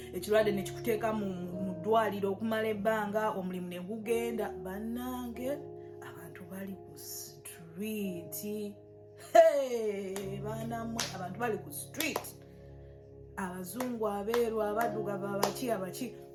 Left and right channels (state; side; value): identical; both; correlation 1.00